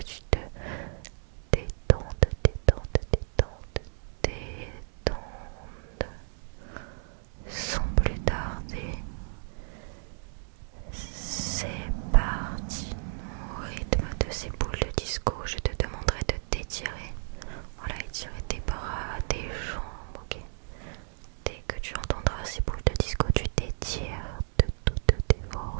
tu te détendes, sans plus tarder. C'est parti. Au rythme de ces boules de disco, je te demanderai de t'étirer. Voilà, étirer tes bras, tes jambes, ok. Dès que tu entendras ces boules de disco, tu t'étires de toutes tes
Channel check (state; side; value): silent; left; 57 dB below the other